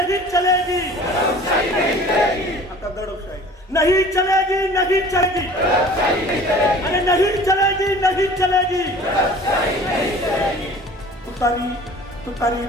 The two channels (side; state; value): both; normal; correlation 0.45